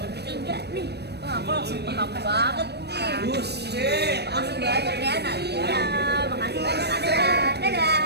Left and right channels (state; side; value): late; left; 0.48 ms